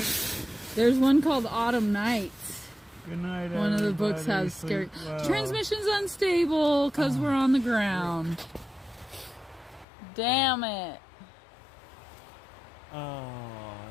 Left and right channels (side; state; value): right; drops out; at 9.9 s